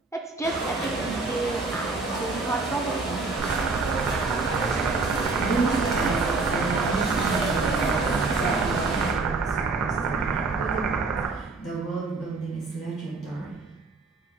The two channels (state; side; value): quieter; left; 3.8 dB